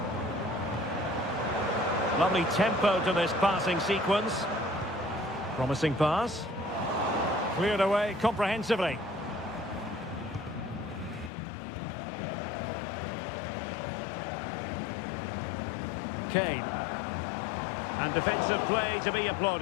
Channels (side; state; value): right; drops out; at 11.3 s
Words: Lovely tempo to this passing sequence. Promising pass. Cleared away comprehensively. Kane. And defensive play to be